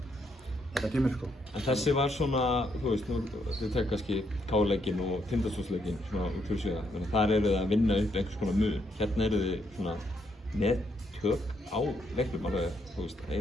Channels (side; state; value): both; normal; correlation 0.75